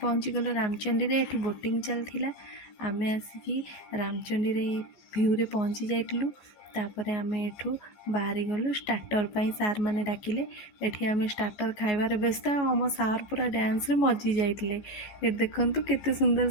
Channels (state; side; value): late; right; 14 ms